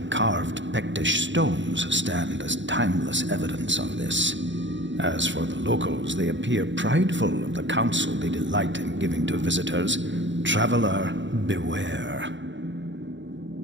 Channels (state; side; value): late; left; 0.54 ms